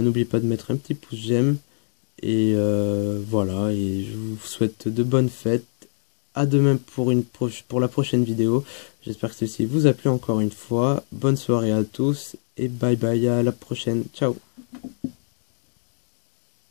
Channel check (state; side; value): silent; right; digital silence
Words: pas de mettre un petit pouce j'aime. Et voilà, et je vous souhaite de bonnes fêtes. À demain pour la prochaine vidéo. J'espère que ceci vous a plu encore une fois. Bonne soirée à tous et bye bye, à la prochaine. Ciao.